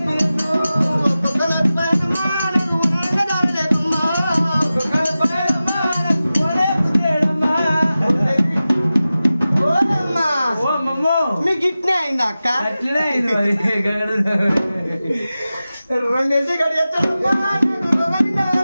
మీకు ఇట్నే అయిందా అక్క? రెండేసి గడి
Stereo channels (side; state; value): both; inverted; correlation -0.95